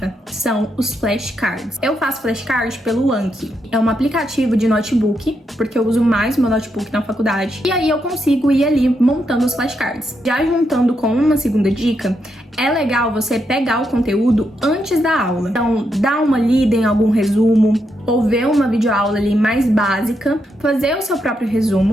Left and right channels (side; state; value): both; normal; correlation 0.81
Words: são os flashcards. Eu faço flashcards pelo Anki. É um aplicativo de notebook, porque eu uso mais o meu notebook na faculdade. E aí eu consigo ir ali montando os flashcards. Já juntando com uma segunda dica, é legal você pegar o conteúdo antes da aula. Então, dar uma lida em algum resumo, ou ver uma videoaula ali mais básica, fazer o seu próprio